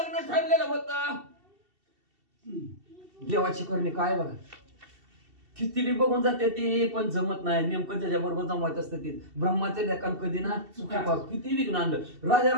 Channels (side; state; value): left; late; 2.7 ms